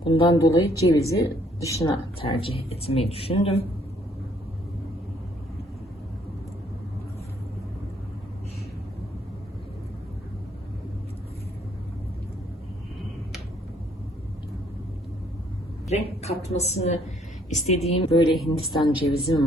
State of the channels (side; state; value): both; normal; correlation 0.65